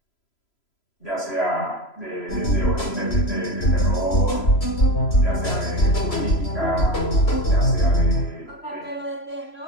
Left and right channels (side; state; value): right; late; 3.0 ms